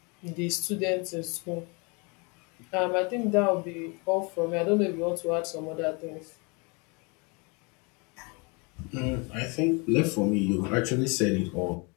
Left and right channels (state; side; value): quieter; right; 30.8 dB